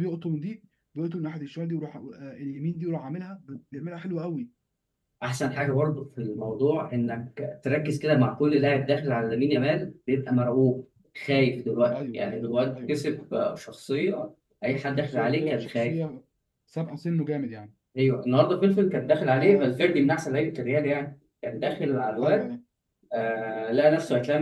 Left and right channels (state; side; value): identical; both; correlation 1.00